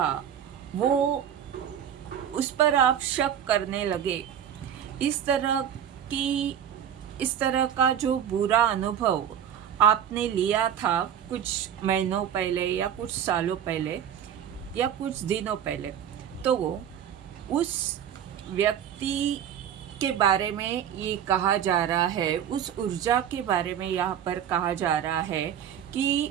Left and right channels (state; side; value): quieter; left; 9.4 dB